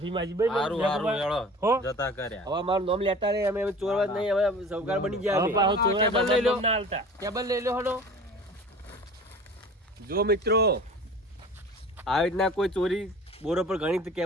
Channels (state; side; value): normal; both; correlation 0.41